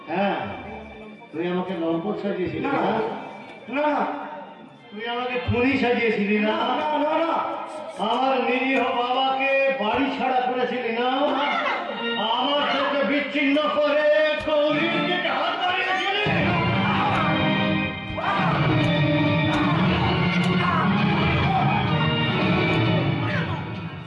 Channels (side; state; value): both; identical; correlation 1.00